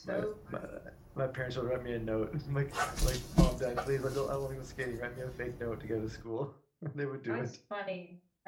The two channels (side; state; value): both; identical; correlation 1.00